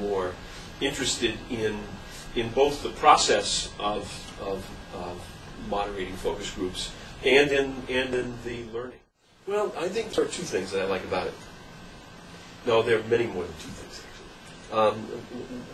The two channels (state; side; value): identical; both; correlation 1.00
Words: interested in both the process of moderating focus groups and in the learning. Well, I think there are 2 things that I like about it. No, there are many more than 2 things, actually.